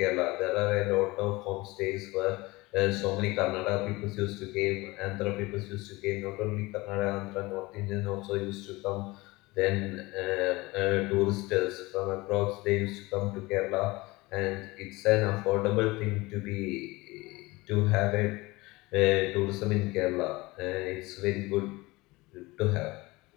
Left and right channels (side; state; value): right; quieter; 21.9 dB